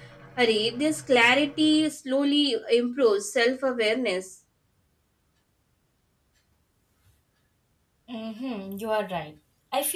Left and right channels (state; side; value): identical; both; correlation 1.00